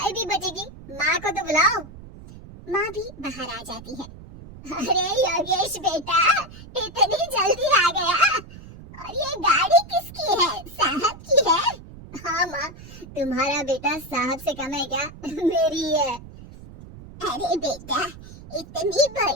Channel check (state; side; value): noise; right; rumble, 17 dB below the sound